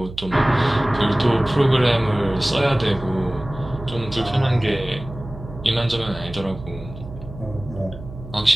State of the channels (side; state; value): right; noise; hum, 14 dB below the sound